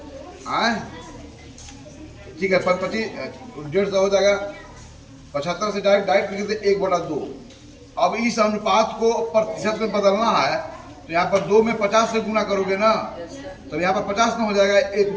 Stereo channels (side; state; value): both; identical; correlation 1.00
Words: हाँ ठीक है, 25 150 हो जाएगा। 75 से डायरेक्ट लिख देते 1/2। अब इस अनुपात को प्रतिशत में बदलना है तो यहाँ पर 2 में 50 से गुना करोगे ना, तो यहाँ पर 50 ना हो जाएगा, 1